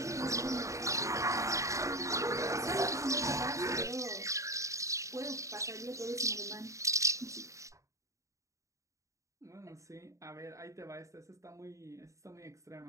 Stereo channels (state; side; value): late; left; 0.15 ms